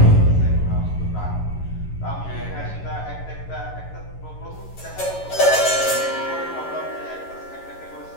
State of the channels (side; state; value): right; late; 11 ms